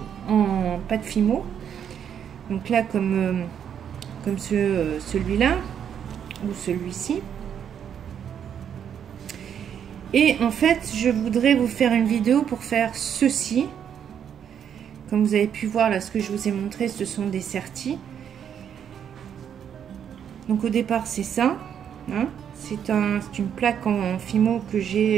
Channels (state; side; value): quieter; left; 8.6 dB